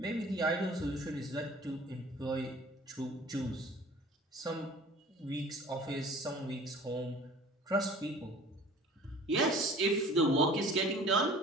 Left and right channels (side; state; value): both; normal; correlation 0.46